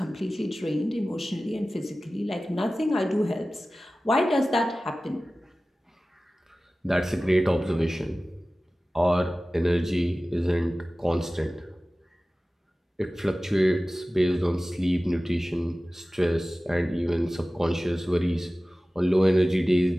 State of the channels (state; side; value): normal; both; correlation 0.97